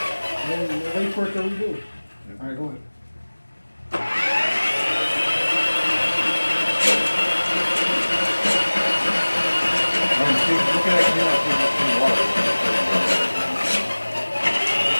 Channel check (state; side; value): inverted; both; correlation -1.00